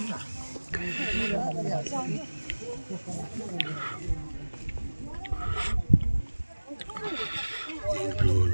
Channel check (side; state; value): both; inverted; correlation -1.00